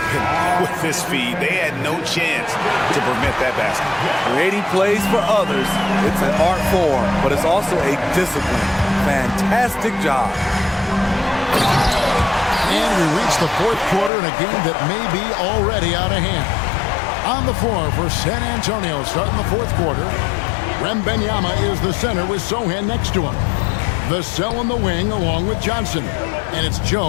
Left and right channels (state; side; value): drops out; right; at 14.1 s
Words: with his feed. They had no chance to prevent that basket. Creating plays for others, it's an art form, but it's also a discipline. Fantastic job. And we reach the fourth quarter in a game that may be already out of hand. On the floor for San Antonio starting the fourth quarter, Wembanyama is the center with Sohan next to him. Vassell in the wing along with Johnson. And it's